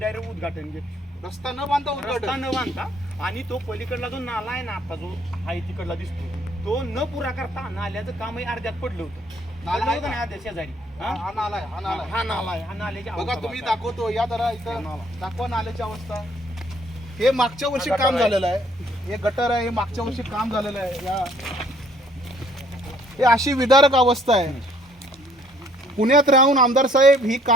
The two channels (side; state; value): both; normal; correlation 0.62